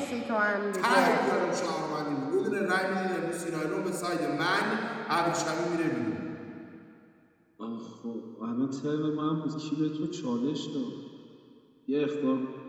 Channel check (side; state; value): both; identical; correlation 1.00